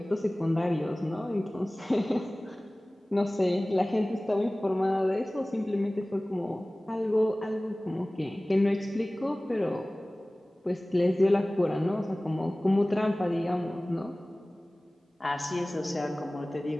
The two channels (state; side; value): normal; both; correlation 0.98